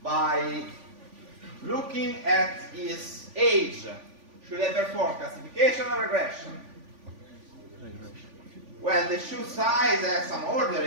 looking at his age, should I perform classification or regression? Well, the shoe size has some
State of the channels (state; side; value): late; left; 3.5 ms